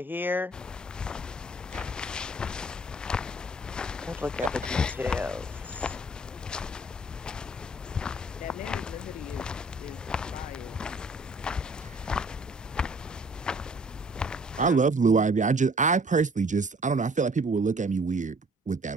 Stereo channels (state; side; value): normal; both; correlation 0.56